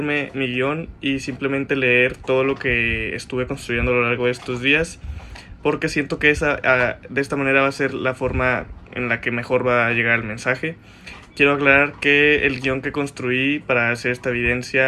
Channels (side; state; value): both; identical; correlation 1.00